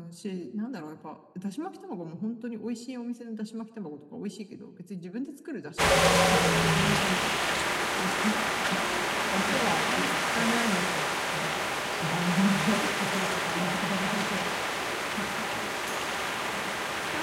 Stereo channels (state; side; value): identical; both; correlation 1.00